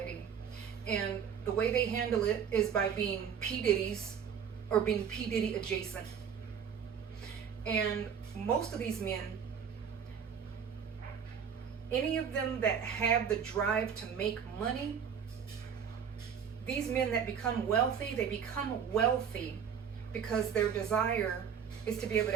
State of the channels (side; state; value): left; quieter; 7.5 dB